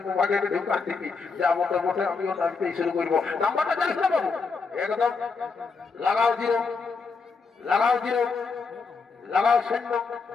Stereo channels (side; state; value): right; quieter; 4.7 dB